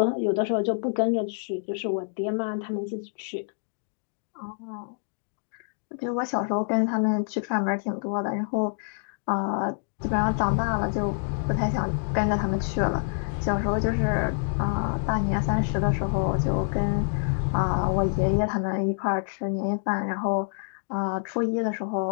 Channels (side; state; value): right; silent; digital silence